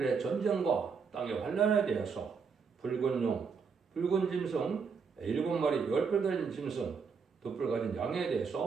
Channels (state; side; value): quieter; left; 5.7 dB